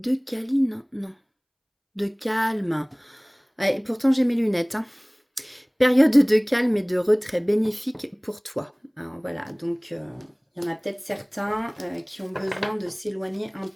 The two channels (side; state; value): both; identical; correlation 1.00